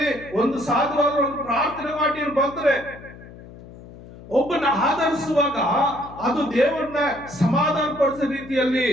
ಒಂದು ಸಾಧುವಾದ ಒಂದು ಪ್ರಾರ್ಥನೆ ಮಾಡಿ ಬಂದ್ರೆ ಒಬ್ಬನ ಆಧರಿಸುವಾಗ ಅದು ದೇವರನ್ನ ಸಮಾಧಾನ ಪಡಿಸೋ ರೀತಿಯಲ್ಲಿ,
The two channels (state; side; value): noise; left; hum, 18 dB below the sound